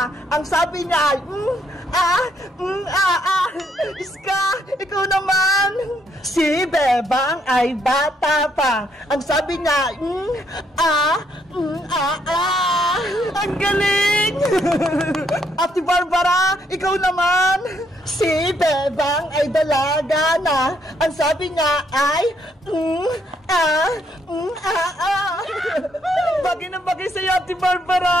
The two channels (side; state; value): both; normal; correlation 0.72